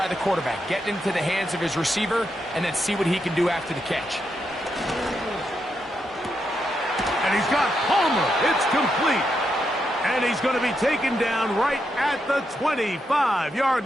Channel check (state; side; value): normal; both; correlation 0.83